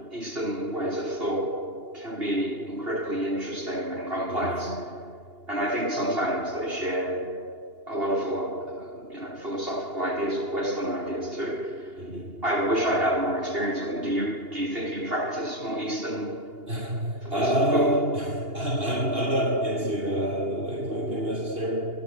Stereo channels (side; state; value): left; late; 2.8 ms